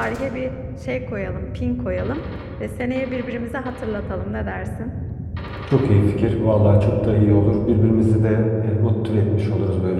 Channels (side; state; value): both; identical; correlation 1.00